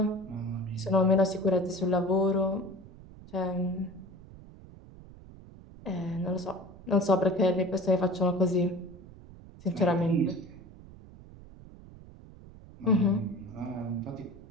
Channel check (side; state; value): right; noise; rumble, 19 dB below the sound